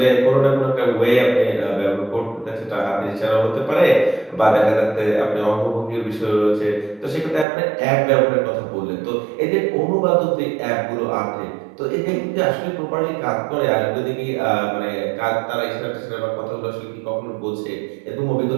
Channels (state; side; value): drops out; left; at 7.5 s